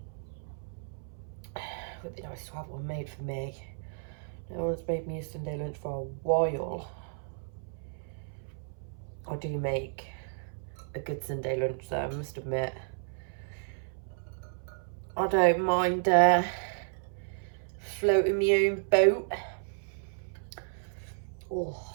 It would be nice to have one made for me. No one's made me a Sunday lunch for a while. I do make a good Sunday lunch though, I must admit. I don't mind floating my own boat. Oh,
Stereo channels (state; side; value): silent; left; 56 dB below the other